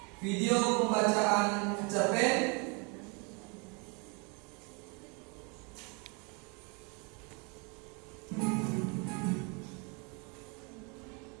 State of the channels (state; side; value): quieter; left; 32.4 dB